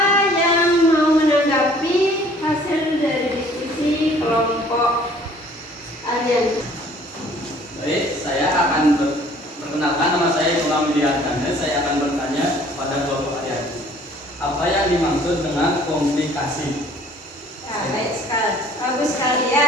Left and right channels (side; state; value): both; normal; correlation 0.55